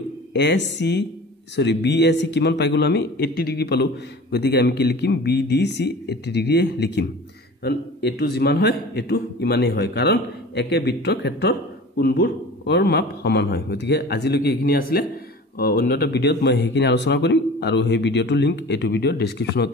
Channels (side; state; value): both; normal; correlation 0.40